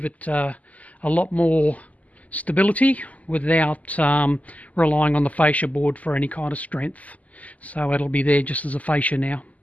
it a lot more stability without relying on the fascia board for any kind of strength. So it'll be there just as a fascia now.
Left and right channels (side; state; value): right; late; 0.073 ms